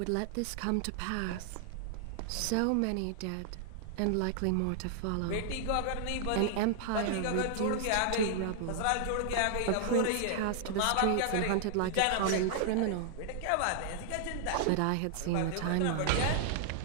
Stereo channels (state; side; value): different; both; correlation -0.01